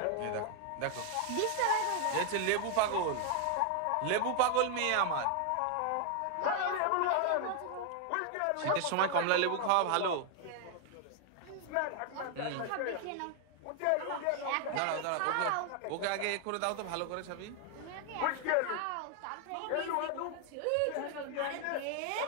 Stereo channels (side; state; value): both; different; correlation 0.00